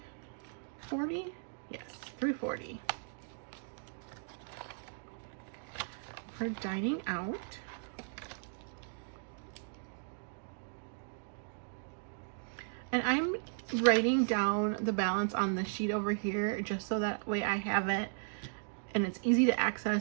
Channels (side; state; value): left; silent; digital silence